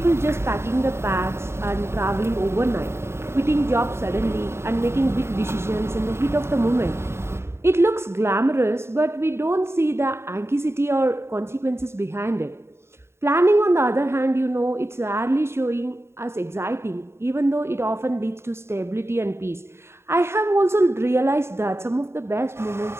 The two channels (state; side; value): late; left; 0.12 ms